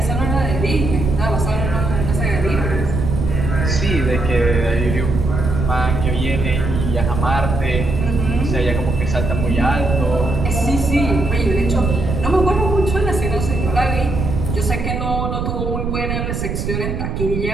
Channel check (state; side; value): noise; right; rumble, 2 dB below the sound